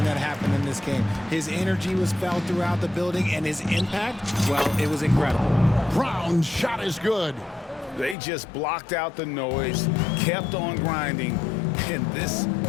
that happened in this game. His energy was felt throughout the building, and his impact, well, it was incredible. Brown's shot is good. They just blocked out the noise, kept on grinding, and this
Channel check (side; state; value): right; drops out; at 8.2 s